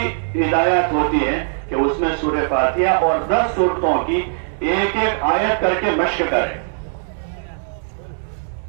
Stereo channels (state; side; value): silent; left; 66 dB below the other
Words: ہدایت ہوتی ہے کہ اس میں سورہ فاتحہ اور 10 صورتوں کی ایک ایک آیت کر کے مشق کریں،